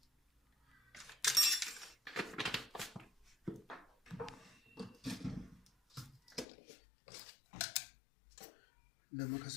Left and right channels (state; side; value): drops out; right; at 6.5 s